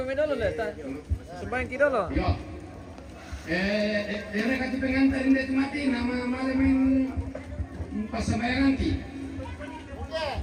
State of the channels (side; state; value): both; identical; correlation 1.00